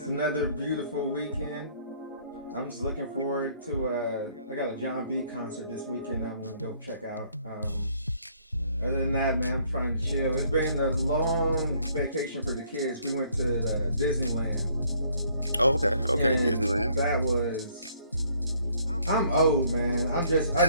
another beautiful weekend. I'm just looking forward to. I got a John B concert this weekend. I'm gonna go check out. Other than that, man, I'm trying to chill. It's been a long vacation for the kids. We went to Disneyland, Oh, okay, okay. and Disneyland. that was. I'm old, man. I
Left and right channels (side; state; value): both; inverted; correlation -0.64